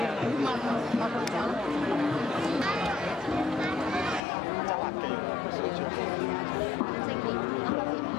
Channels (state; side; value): drops out; right; at 4.2 s